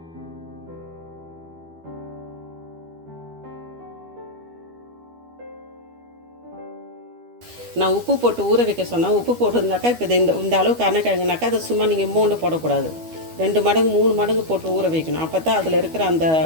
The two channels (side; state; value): left; late; 12 ms